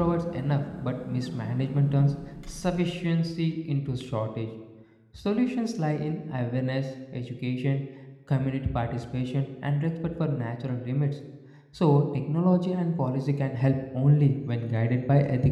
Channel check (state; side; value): identical; both; correlation 1.00